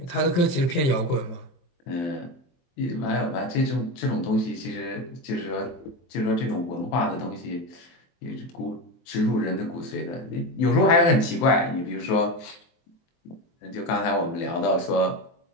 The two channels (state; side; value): late; right; 23 ms